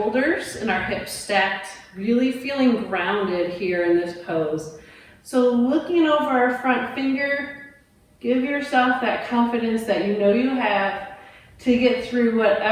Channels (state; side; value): identical; both; correlation 1.00